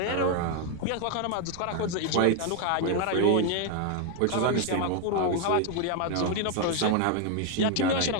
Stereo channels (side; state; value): both; different; correlation 0.01